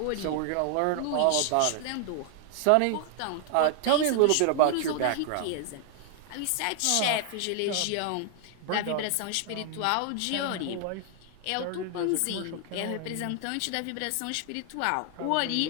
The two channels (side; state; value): both; different; correlation 0.00